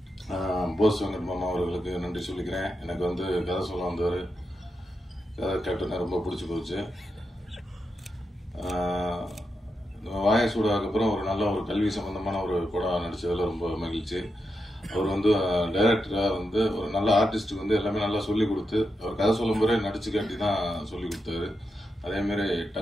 போஸ் வெங்கட் மாமா அவர்களுக்கு நன்றி சொல்லிக்கிறேன். எனக்கு வந்து கதை சொல்ல வந்தவர், கதை கேப்டனை ரொம்ப பிடிச்சி போச்சு. வாயசூடாக்கு அப்புறம் ஒரு நல்ல ஒரு கல்வி சம்பந்தமான ஒரு படம் நடிச்சதுல ரொம்ப மகிழ்ச்சி. அவர் வந்து டைரக்டரா வந்து ஒரு நல்ல ஆர்டிஸ்டுக்கு வந்து எல்லாமே நல்லா சொல்லி கொடுத்து, அவர் கதை சொல்லும் போதே நடிச்சு காட்டி தான் சொல்லி கொடுத்தாரு. அதே மாதிரி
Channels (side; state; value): both; normal; correlation 0.87